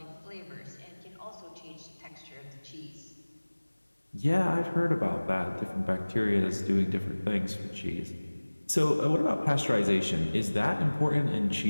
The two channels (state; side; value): inverted; both; correlation -1.00